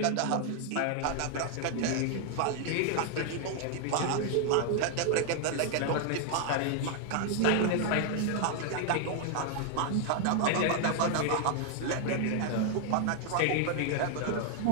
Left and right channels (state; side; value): different; both; correlation 0.00